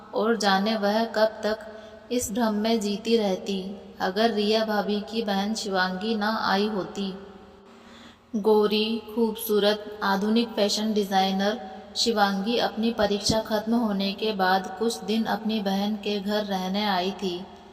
और जाने वह कब तक इस भ्रम में जीती रहती अगर रिया भाभी की बहन शिवांगी ना आई होती। गोरी, खूबसूरत, आधुनिक फैशन डिज़ाइनर शिवांगी अपनी परीक्षा खत्म होने के बाद कुछ दिन अपनी बहन के घर रहने आई थी,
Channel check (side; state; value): both; identical; correlation 1.00